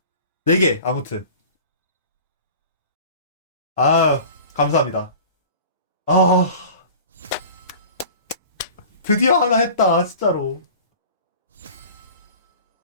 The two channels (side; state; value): both; inverted; correlation -0.41